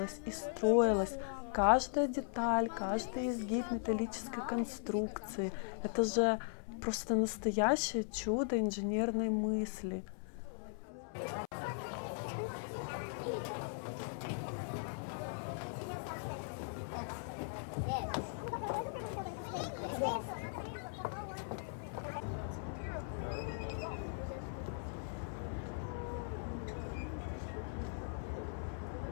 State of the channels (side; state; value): right; silent; 52 dB below the other